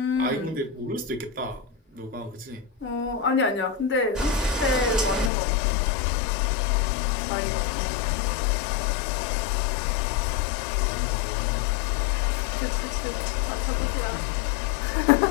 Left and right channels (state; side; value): drops out; right; at 5.3 s